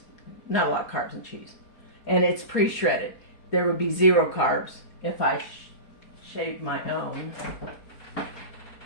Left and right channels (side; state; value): right; late; 4.2 ms